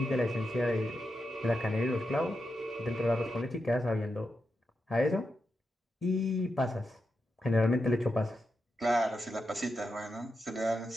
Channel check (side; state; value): both; normal; correlation 0.87